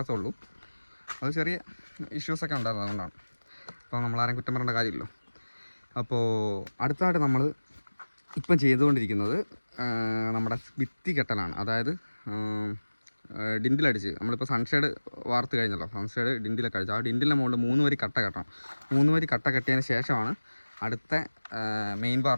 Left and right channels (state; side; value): inverted; both; correlation -1.00